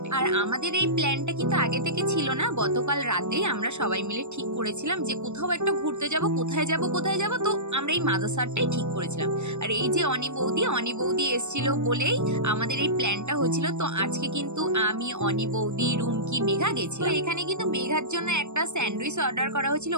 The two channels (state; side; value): late; left; 0.83 ms